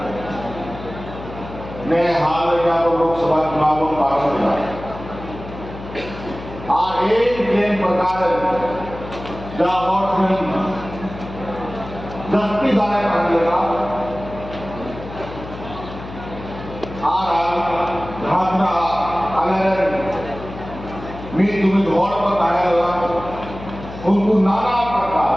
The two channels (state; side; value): noise; left; hum, 13 dB below the sound